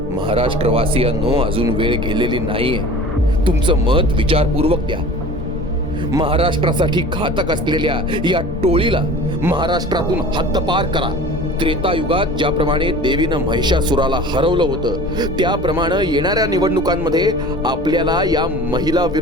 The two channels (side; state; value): both; normal; correlation 0.41